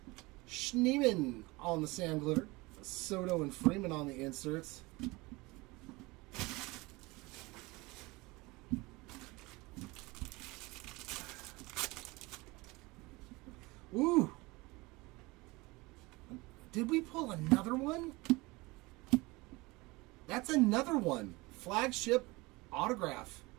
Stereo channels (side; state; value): left; quieter; 23.1 dB